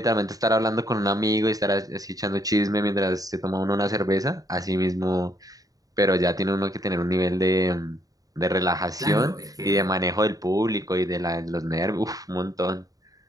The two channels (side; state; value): left; late; 0.18 ms